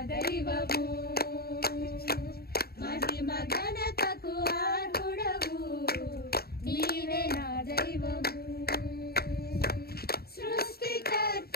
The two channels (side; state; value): right; late; 0.45 ms